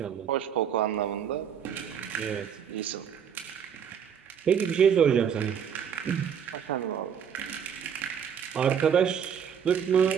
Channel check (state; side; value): quieter; left; 7.9 dB